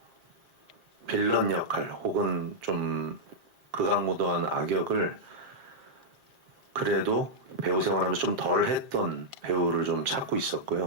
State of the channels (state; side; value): late; left; 7.5 ms